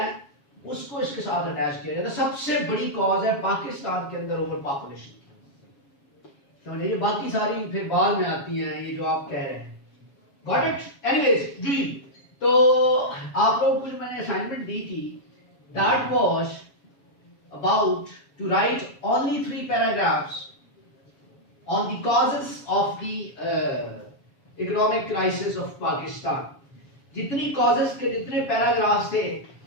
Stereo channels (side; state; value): right; late; 7.2 ms